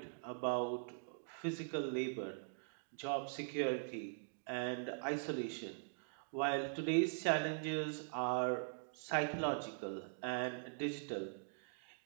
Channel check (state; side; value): silent; left; digital silence